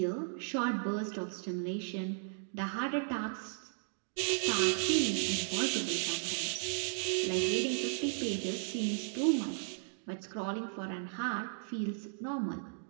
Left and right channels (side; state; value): left; silent; digital silence